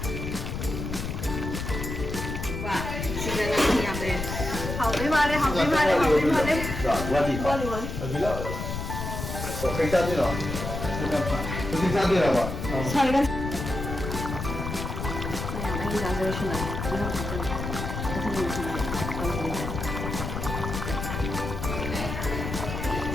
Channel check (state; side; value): noise; left; rumble, 5 dB below the sound